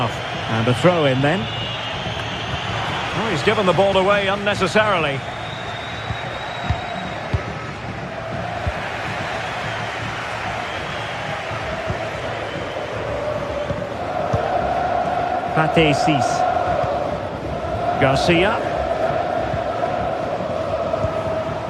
And a throw in then. Oh, he's given the ball away unnecessarily. Pate Cis. Garcia.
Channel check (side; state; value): both; identical; correlation 1.00